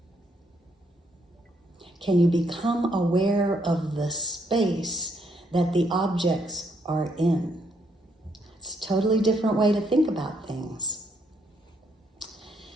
Can you become aware of the space that the objects are in? It's a totally different way to think about things.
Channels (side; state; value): both; normal; correlation 0.73